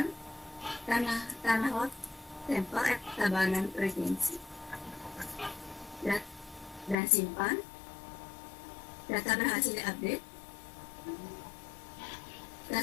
tanah lot tempel Tabanan Regency, dan simpan. Data berhasil diupdate.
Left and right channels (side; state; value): right; drops out; at 7.0 s